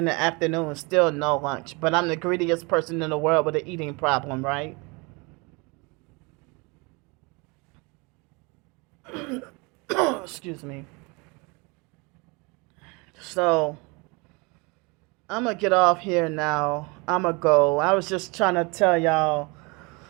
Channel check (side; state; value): left; quieter; 28.4 dB